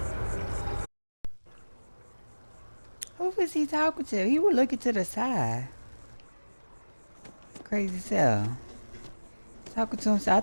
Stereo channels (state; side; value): inverted; both; correlation -1.00